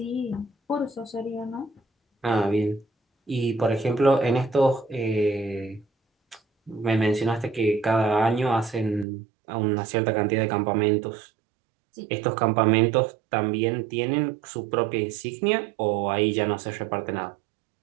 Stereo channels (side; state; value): left; drops out; at 9.1 s